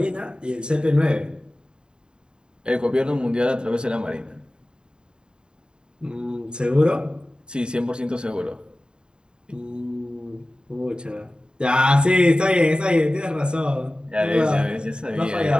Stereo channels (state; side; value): late; left; 0.049 ms